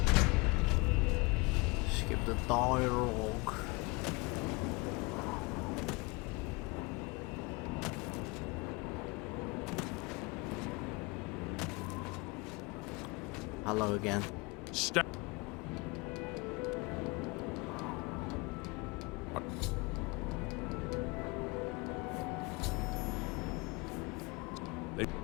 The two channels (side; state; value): right; quieter; 26.8 dB